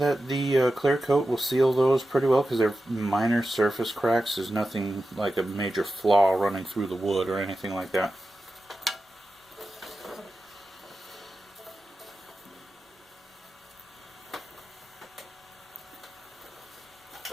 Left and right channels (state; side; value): normal; both; correlation 0.92